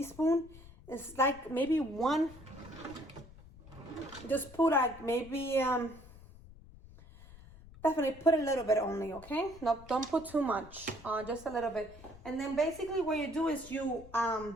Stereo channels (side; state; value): left; noise; rumble, 19 dB below the sound